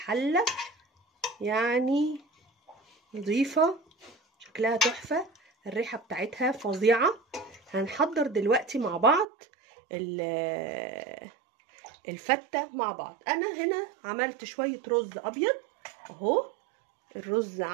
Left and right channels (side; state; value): left; drops out; at 9.2 s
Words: يعني نظيفة، شكلها تحفة، الريحة بتاعتها فظيعة. هنحضر دلوقتي مع بعض الفتة مع بعض. انا هنا عملت شوية رز ابيض اهو. الرز